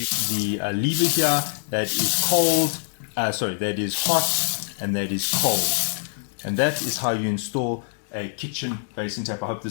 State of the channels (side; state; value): right; silent; digital silence